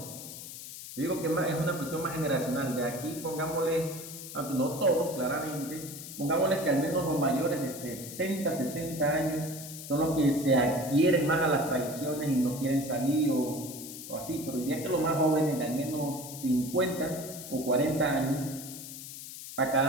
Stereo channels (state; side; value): noise; left; hiss, 11 dB below the sound